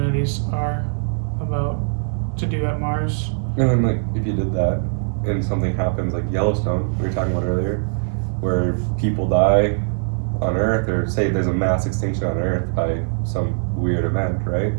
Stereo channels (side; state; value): left; silent; 65 dB below the other